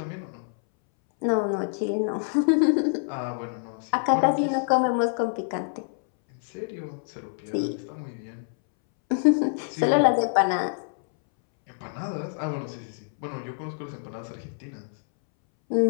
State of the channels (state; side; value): silent; right; 61 dB below the other